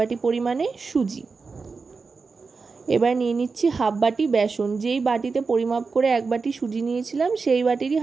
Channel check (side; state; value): left; quieter; 4.6 dB